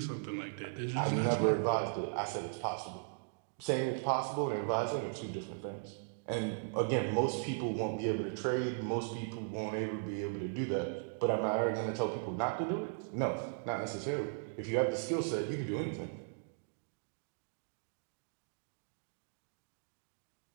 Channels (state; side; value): silent; left; digital silence